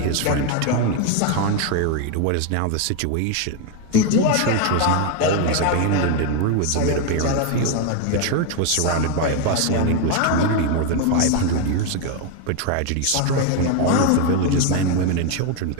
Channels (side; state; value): both; different; correlation 0.01